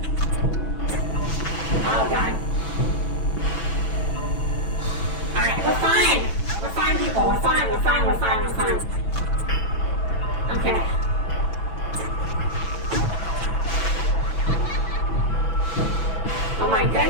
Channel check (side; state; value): right; late; 6.0 ms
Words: Oh, God. Alright, we're fine. We're fine, people. We're fine. Okay. Oh, my